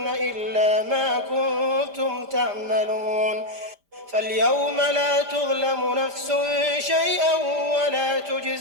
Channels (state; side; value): late; left; 5.0 ms